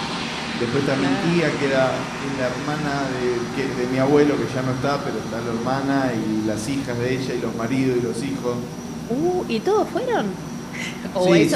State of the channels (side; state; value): both; identical; correlation 1.00